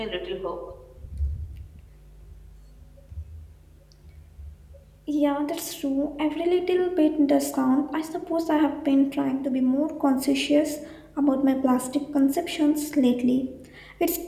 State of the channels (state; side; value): identical; both; correlation 1.00